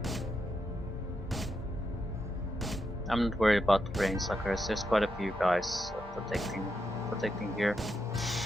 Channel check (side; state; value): both; normal; correlation 0.84